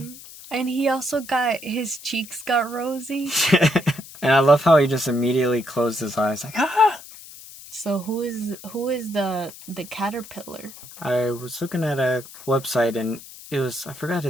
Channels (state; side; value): noise; left; hiss, 17 dB below the sound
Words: And he also his cheeks got rosy. And I love how he just immediately closed his eyes, like, ah! So who is the caterpillar? I was looking at a website and it was, I forgot